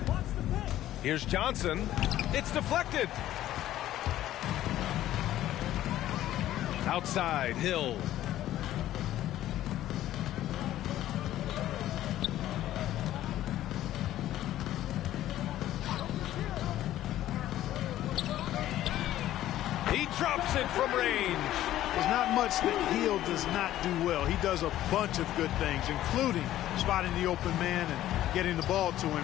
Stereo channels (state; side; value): quieter; right; 13.4 dB